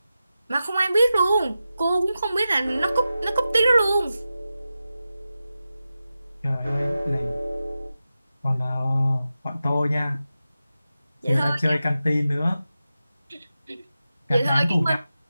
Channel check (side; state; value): both; inverted; correlation -0.92